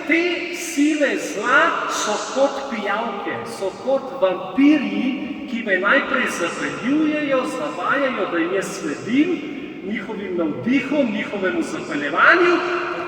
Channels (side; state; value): both; identical; correlation 1.00